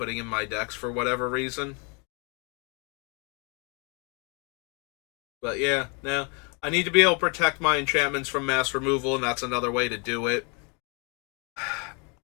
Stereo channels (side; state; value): right; quieter; 33.5 dB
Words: in my decks for whatever reason. But yeah, no. I need to be able to protect my enchantments from mass removal, and that's another way to do it.